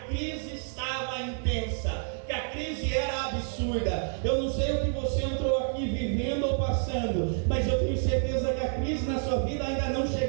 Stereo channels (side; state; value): left; silent; 59 dB below the other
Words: crise estava intensa, que a crise era absurda. Eu não sei o que você entrou aqui vivendo ou passando, mas eu tenho certeza que a crise na sua vida ainda não